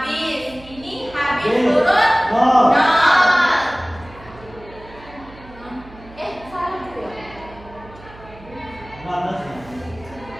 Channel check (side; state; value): right; noise; hum, 20 dB below the sound